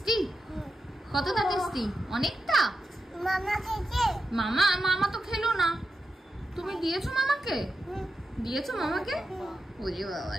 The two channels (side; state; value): both; normal; correlation 0.89